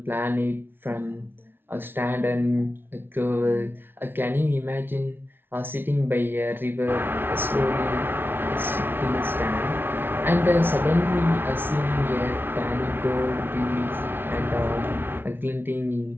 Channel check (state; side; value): late; left; 0.11 ms